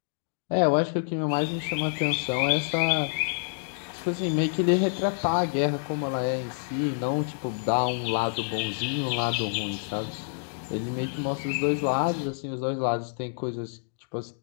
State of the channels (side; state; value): right; silent; digital silence